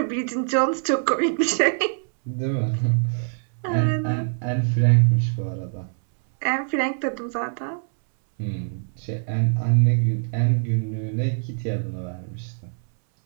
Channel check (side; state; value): left; silent; 63 dB below the other